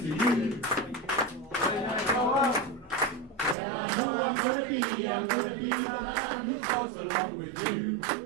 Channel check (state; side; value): drops out; left; at 3.6 s